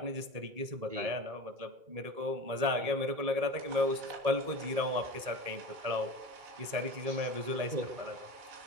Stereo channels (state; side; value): late; left; 2.3 ms